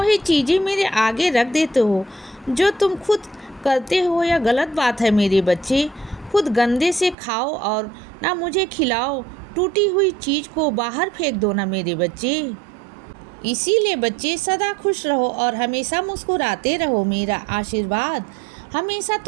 चीज़ें मेरे आगे रख देते हो जो तुम खुद करते हो। यह गलत बात है मेरे बच्चे। खुद गंदे से खाओ और ना मुझे खिलाओ। टूटी हुई चीज़ को बाहर फेंक दो ना मेरे बच्चे। इसीलिए बच्चे, सदा खुश रहो और हमेशा मुस्कुराते रहो। मेरा आशीर्वाद हमेशा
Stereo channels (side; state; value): left; drops out; at 7.2 s